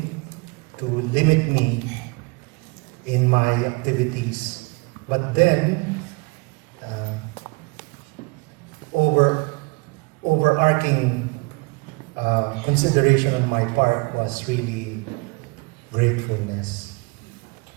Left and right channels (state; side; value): quieter; left; 28.0 dB